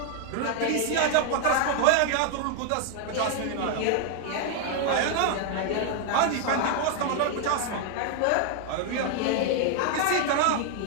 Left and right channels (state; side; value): different; both; correlation 0.00